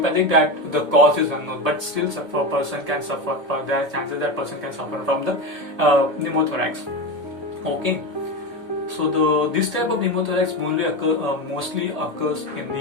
That the cause is unknown, but still a person can suffer. There are chances that person can suffer from the pneumothorax. Okay. So this type of pneumothorax mostly occurs in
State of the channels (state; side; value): late; left; 1.7 ms